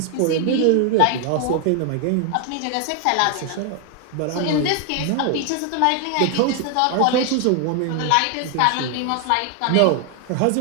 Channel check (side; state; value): both; different; correlation 0.00